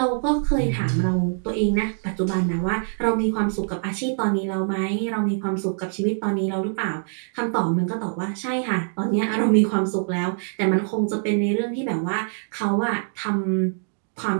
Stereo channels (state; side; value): silent; left; 63 dB below the other